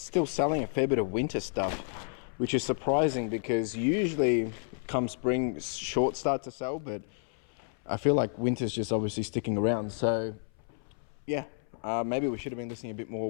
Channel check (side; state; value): right; silent; 57 dB below the other